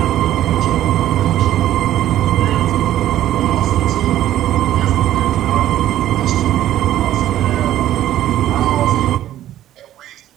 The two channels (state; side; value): quieter; left; 12.9 dB